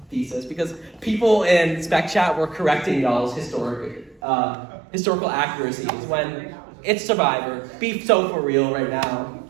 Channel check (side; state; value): left; drops out; at 4.2 s